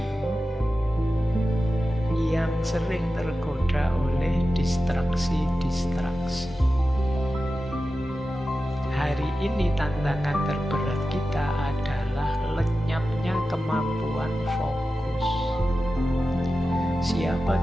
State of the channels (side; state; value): both; normal; correlation 0.93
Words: yang sering tergoda oleh distraksi-distraksi. Hari ini tantangan terberat kita adalah lenyapnya kemampuan fokus. Siapa